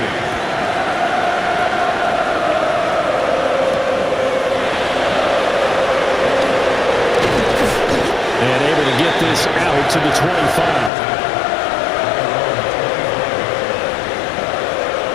And able to get this out to the 25.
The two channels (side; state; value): right; drops out; at 10.9 s